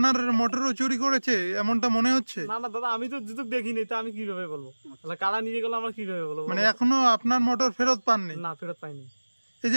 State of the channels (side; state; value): both; inverted; correlation -1.00